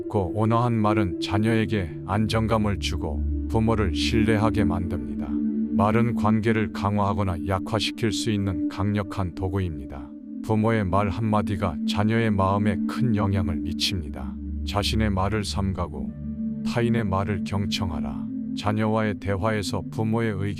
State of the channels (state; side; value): identical; both; correlation 1.00